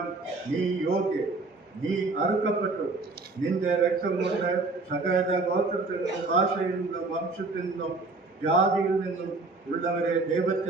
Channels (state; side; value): quieter; left; 3.6 dB